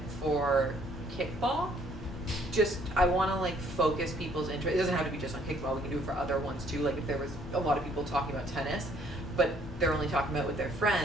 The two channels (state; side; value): normal; both; correlation 0.63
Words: for kickball. Just, I want to like focus people's interest. It doesn't have to be just on kickball. We can do it for other ones too. Like if there was a lot of people talking about tennis, but they're only talking about it with their